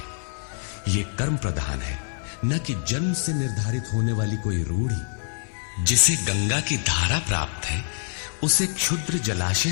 ये कर्म प्रधान है, न कि जन्म से निर्धारित होने वाली कोई रूढ़ी। जिसे गंगा की धारा प्राप्त है उसे क्षुद्र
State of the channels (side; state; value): right; silent; 61 dB below the other